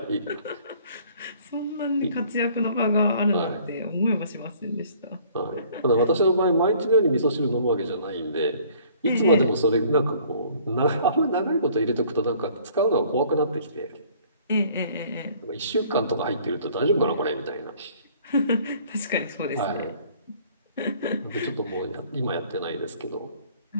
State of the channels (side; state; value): both; inverted; correlation -0.56